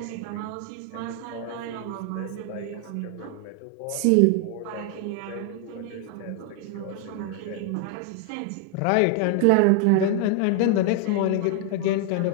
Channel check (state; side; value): different; both; correlation 0.00